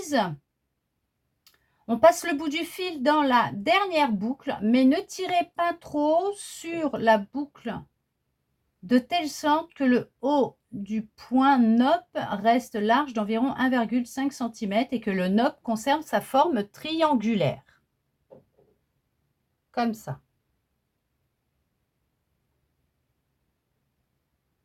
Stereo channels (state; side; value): identical; both; correlation 1.00